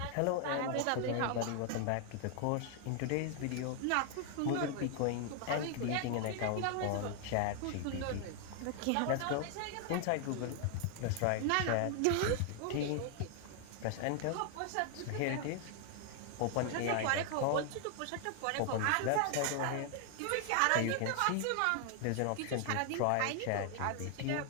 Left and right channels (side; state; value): both; different; correlation 0.00